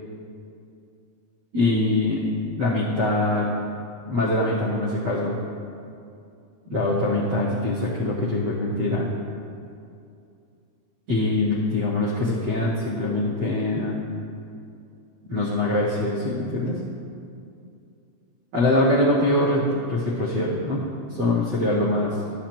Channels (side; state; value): left; late; 17 ms